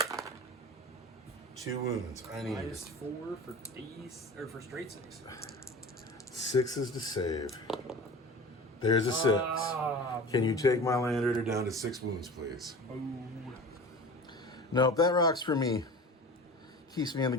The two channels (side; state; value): both; normal; correlation 0.36